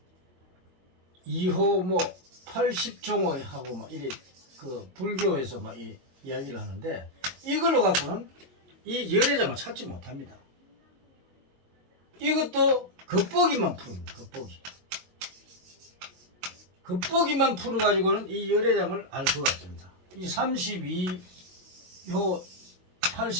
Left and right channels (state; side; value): late; left; 22 ms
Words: 2호 뭐 80종호 하고 막 이래 그 불교에서 막 이야기를 하는데 이걸로 갖고는 이 열애장을 찾지 못합니다. 이것도 겉보기만 푸릅니다. 겉보기만 풀어가지고는 이 열애장을 알 수가 없습니다. 이 32호